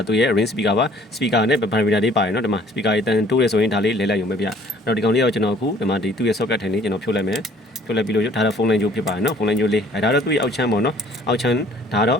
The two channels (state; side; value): normal; both; correlation 0.55